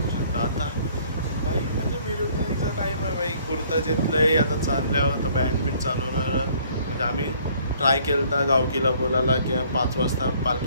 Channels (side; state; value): both; inverted; correlation -0.59